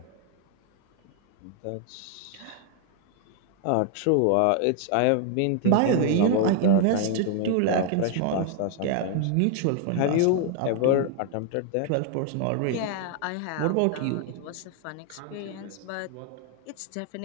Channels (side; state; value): both; different; correlation 0.00